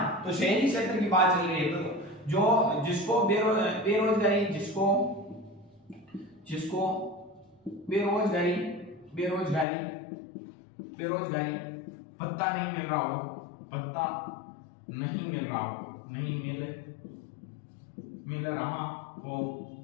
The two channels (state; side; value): drops out; right; at 9.7 s